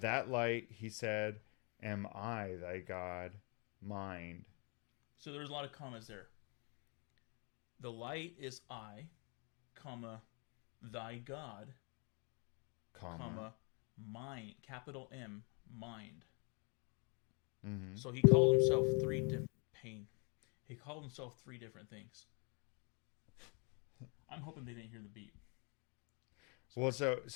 light, he said, am I thy God, mind. So there's a lot of commas there. The light is I, comma, thy God, comma, mind, capital M, mind. Mm-hmm. So he called himself three different things. I'm hoping they didn't hear the beat. Well, so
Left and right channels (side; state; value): right; quieter; 34.4 dB